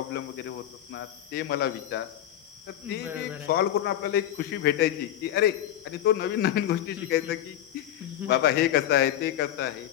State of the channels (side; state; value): right; quieter; 11.9 dB